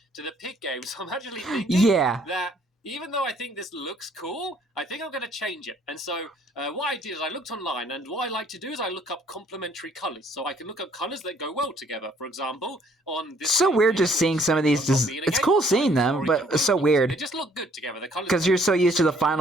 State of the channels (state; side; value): normal; both; correlation 0.63